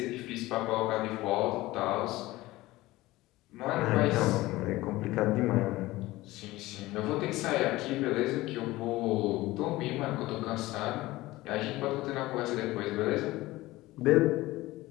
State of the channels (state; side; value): quieter; right; 18.4 dB